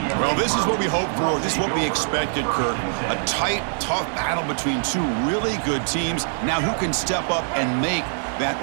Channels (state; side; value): silent; left; digital silence